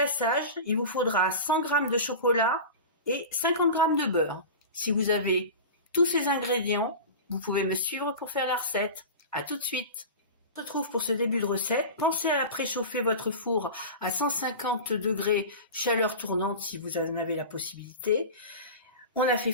il vous faudra 100 g de chocolat et 50 g de beurre. Si vous avez tous ces ingrédients, vous pouvez me suivre pour faire la recette. À tout de suite. On se retrouve pour ce début de recette. Pensez à préchauffer votre four à 150 degrés, chaleur tournante si vous en avez la possibilité. On a fait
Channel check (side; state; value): both; inverted; correlation -0.30